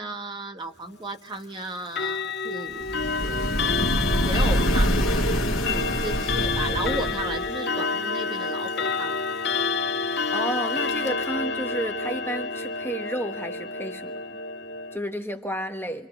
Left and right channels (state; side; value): normal; both; correlation 0.39